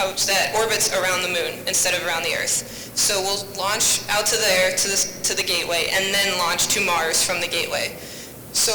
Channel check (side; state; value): both; identical; correlation 1.00